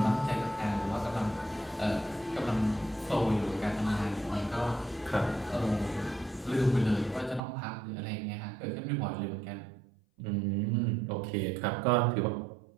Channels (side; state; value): left; drops out; at 7.4 s